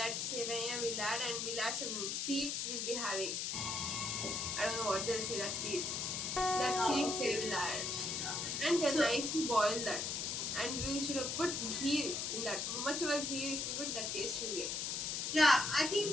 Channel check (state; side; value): noise; left; hiss, 1 dB below the sound